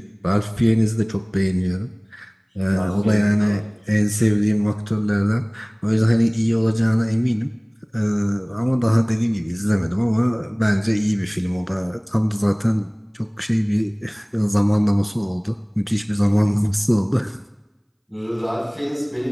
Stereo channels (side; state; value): both; identical; correlation 1.00